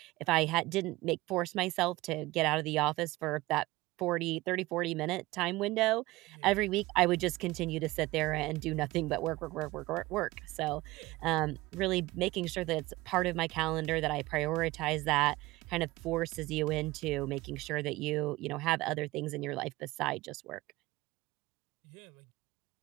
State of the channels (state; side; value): quieter; left; 19.7 dB